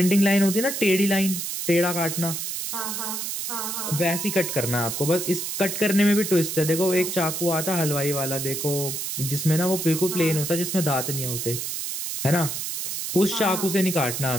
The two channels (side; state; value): right; noise; hiss, 4 dB below the sound